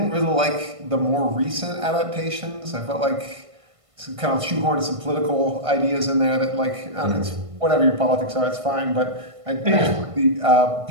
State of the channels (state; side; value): late; left; 1.5 ms